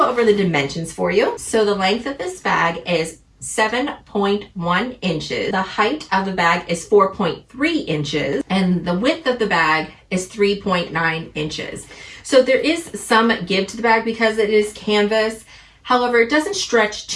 over the dimensions for you. So the length of this bag is 7.1 inches. The height of the bag is 4.3 inches, and the width of the bag is 3.9 inches. So there is some give to the bag because it is canvas. However, it doesn't stretch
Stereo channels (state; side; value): identical; both; correlation 1.00